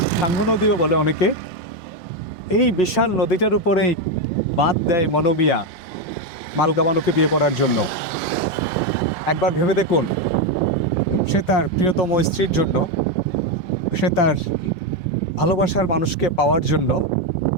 সাঙ্গ নদীও বলে অনেকে। এই বিশাল নদীটার উপরেই বাঁধ দেয় মনু মিয়া মালকা বানুকে বিয়ে করার জন্য। একবার ভেবে দেখুন, সে তার প্রিয়তম স্ত্রীর জন্য, সে তার ভালোবাসার মানুষকে পাওয়ার জন্য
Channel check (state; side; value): late; right; 5.7 ms